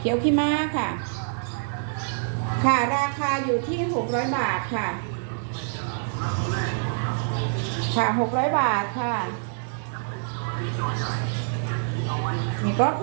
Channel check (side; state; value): left; silent; digital silence